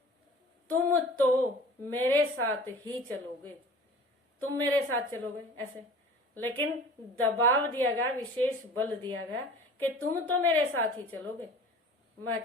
तुम तो मेरे साथ ही चलोगे, तुम मेरे साथ चलोगे, ऐसे। लेकिन दबाव दिया गया, विशेष बल दिया गया कि तुम तो मेरे साथ ही चलोगे, मैं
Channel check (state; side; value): normal; both; correlation 0.43